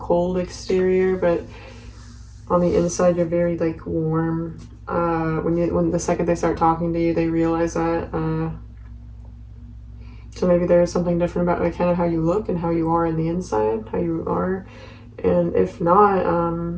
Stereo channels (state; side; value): identical; both; correlation 1.00